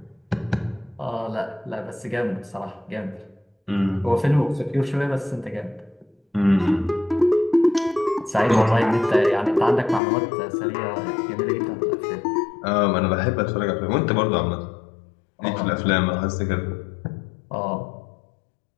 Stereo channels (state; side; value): drops out; right; at 10.0 s